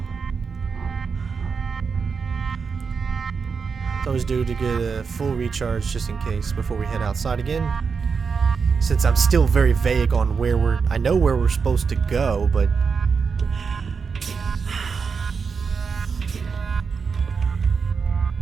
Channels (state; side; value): quieter; left; 5.5 dB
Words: It's always due to get a full recharge just in case before we head outside again. Since I'm still very vague on where I know where we're supposed to go, but